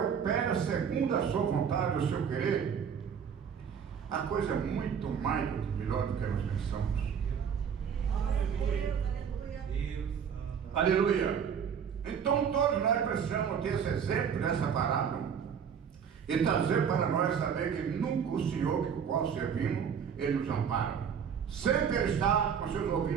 segundo a sua vontade, o seu querer, a coisa é muito mais melhor do que nós pensamos. Aleluia. Então todos nós precisamos ter esse exemplo dessa parábola e trazer para nós saber que nunca o Senhor que o qual servimos, Ele nos ampara. Sempre Ele está com seus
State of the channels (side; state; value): left; quieter; 7.4 dB